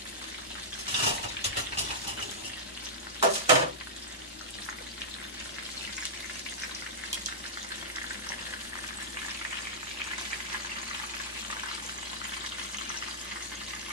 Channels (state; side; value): normal; both; correlation -0.11